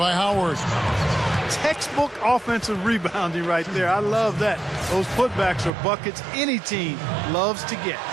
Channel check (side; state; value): left; drops out; at 5.7 s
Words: Howard. Textbook offensive rebounding right there. I love that. Those putbacks are buckets any team loves to get.